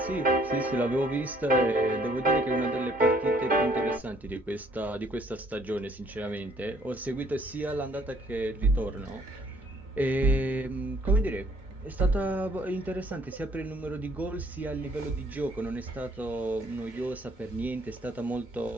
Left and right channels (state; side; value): normal; both; correlation 0.63